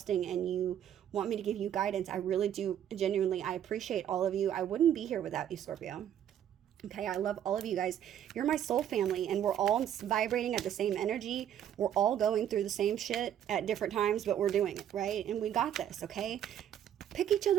and you want me to give you guidance. I really do. Genuinely, I appreciate all of you. I wouldn't be here without you, Scorpio. Okay, I love all of you guys. You're my soul family, and we're all vibrating at the same energy. We're all going through the same shit at different times, but we're doing it, right? And we got this, okay? Pick each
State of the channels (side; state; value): left; quieter; 10.2 dB